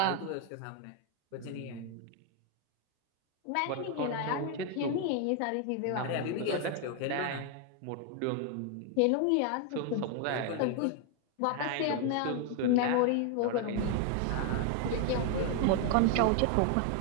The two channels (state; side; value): different; both; correlation 0.01